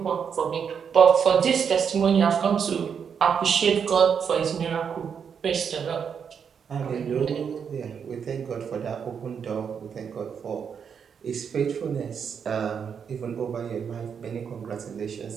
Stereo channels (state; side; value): quieter; left; 7.0 dB